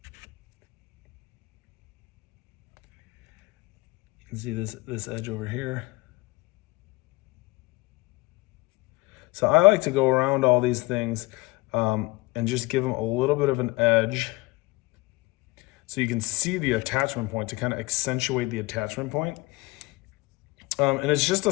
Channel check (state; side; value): quieter; right; 22.7 dB